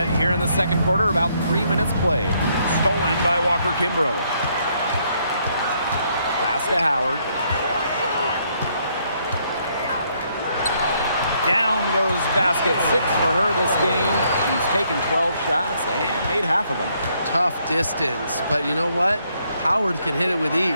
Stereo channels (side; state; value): both; inverted; correlation -0.71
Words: here in the second quarter, about 3 minutes played. Stolen by Walker Kimbrough. Pass to Howard. Down goes basket 6 for her this game. She's taken 12 shots and made half of them. Tough distance, but you know what? Howard can hit it with